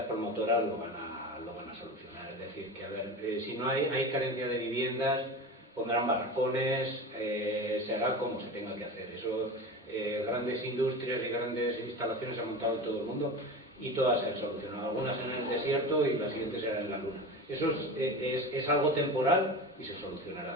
promotoras lo van a solucionar. Es decir, que a ver, si no hay carencia de viviendas, pondrán barracones, se hará como se tenga que hacer. Eso, grandes industrias y grandes instalaciones se han montado en todo el mundo y todas se han solucionado. Algunas en el desierto y las siguientes serán en la luna. Eso es algo temporal y se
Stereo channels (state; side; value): normal; both; correlation 0.29